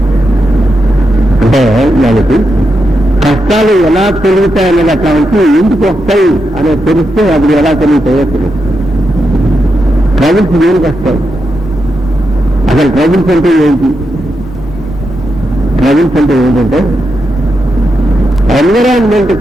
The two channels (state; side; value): normal; both; correlation 0.85